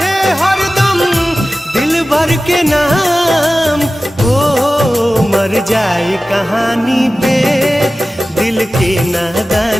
हरदम दिल भर के नाम, ओ मर जाए कहानी पे दिल के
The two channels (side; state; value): both; normal; correlation 0.96